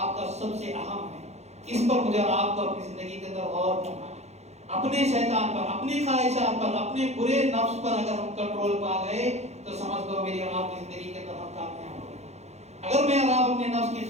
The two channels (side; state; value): left; late; 0.32 ms